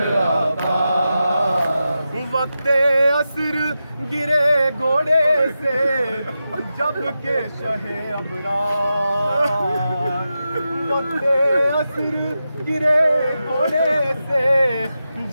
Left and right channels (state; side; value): inverted; both; correlation -0.90